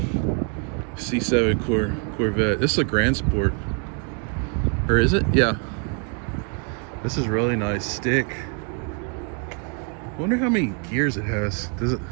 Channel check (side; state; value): left; quieter; 36.6 dB